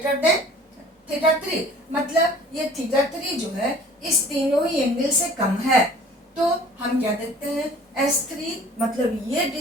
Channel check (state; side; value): normal; both; correlation 0.49